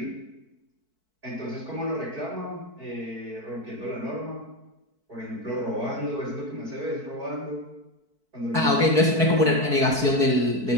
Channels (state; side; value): late; left; 4.5 ms